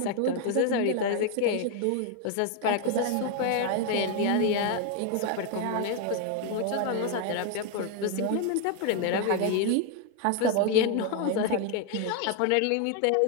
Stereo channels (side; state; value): both; different; correlation 0.00